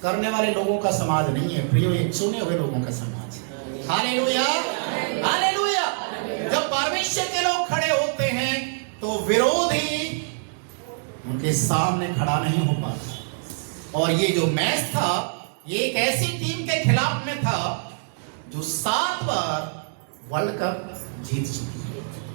करने वाले लोगों का समाज नहीं है प्रियो, ये चुने हुए लोगों का समाज है, हालेलुया, हालेलुया। जब परमेश्वर के लोग खड़े होते हैं तो विरोधी उनके सामने खड़ा नहीं हो पाता। और ये जो मैच था, ये एक ऐसी टीम के खिलाफ में था जो 7 बार वर्ल्ड कप जीत चुकी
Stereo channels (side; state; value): left; silent; 62 dB below the other